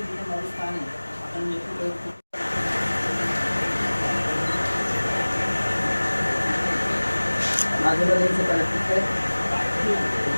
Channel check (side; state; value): both; inverted; correlation -1.00